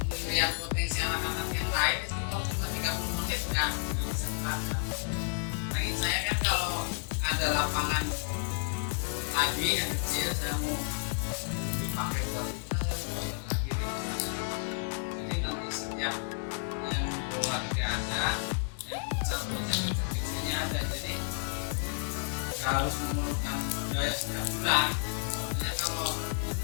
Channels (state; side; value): silent; right; digital silence